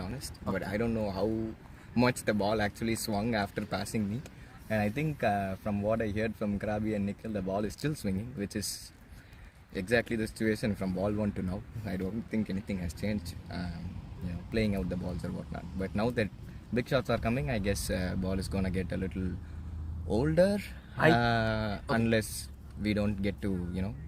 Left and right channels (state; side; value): identical; both; correlation 1.00